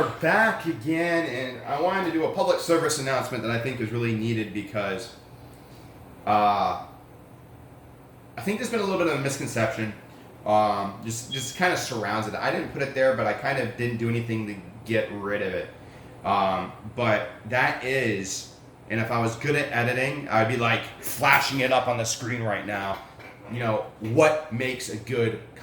back again, and I wanted to do a public service announcement that I think is really needed because I think there's been a little bit of a misconception, just kind of surrounds it. I didn't put it there, but I kind of didn't do anything to get rid of it. But that is, and if I was good at editing, I'd be like flashing it up on the screen right now. You know, what makes a good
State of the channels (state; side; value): identical; both; correlation 1.00